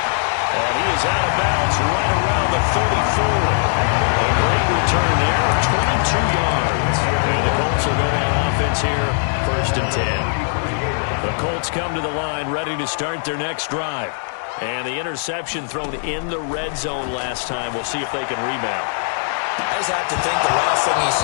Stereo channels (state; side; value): silent; right; digital silence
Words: And he is out of bounds right around the 34. A great return there, 22 yards. And the Colts will go on offense here, 1st and 10. The Colts come to the line, ready to start their next drive. And the interception thrown in the red zone last time. We'll see if they can rebound. I just have to think the last thing he